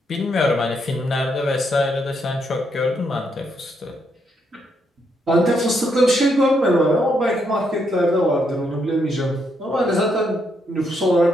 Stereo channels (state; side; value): normal; both; correlation 0.77